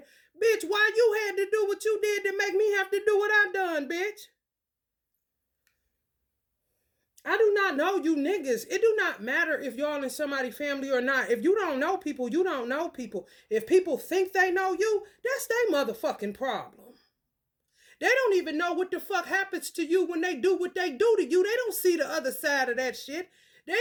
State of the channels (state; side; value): identical; both; correlation 1.00